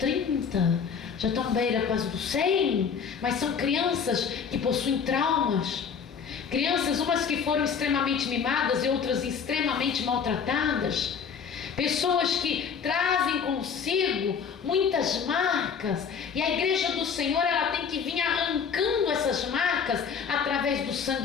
já estão beira quase dos 100, mas são crianças que possuem traumas, crianças umas que foram extremamente mimadas e outras extremamente maltratadas, pessoas que trazem consigo muitas marcas, e a igreja do Senhor, ela tem que vir arrancando essas marcas através do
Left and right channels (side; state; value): right; quieter; 6.6 dB